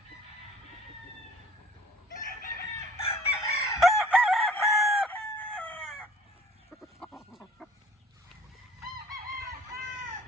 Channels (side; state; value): both; normal; correlation 0.52